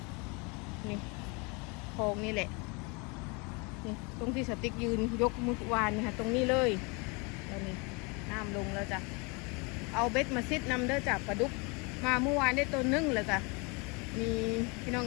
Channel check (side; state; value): right; quieter; 30.1 dB